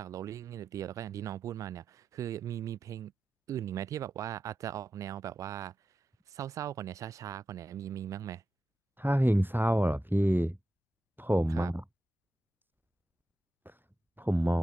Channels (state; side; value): normal; both; correlation 0.91